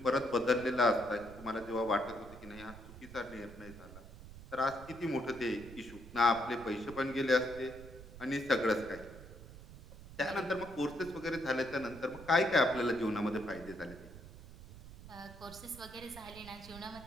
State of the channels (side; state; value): right; noise; rumble, 16 dB below the sound